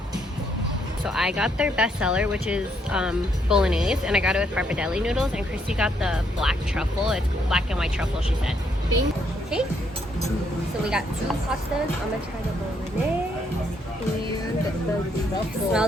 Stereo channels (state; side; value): normal; both; correlation 0.73